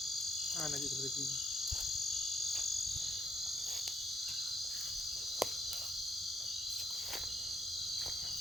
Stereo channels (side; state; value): both; normal; correlation 0.73